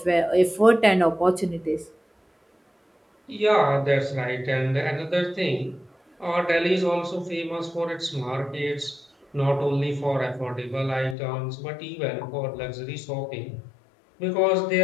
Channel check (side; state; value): right; drops out; at 11.2 s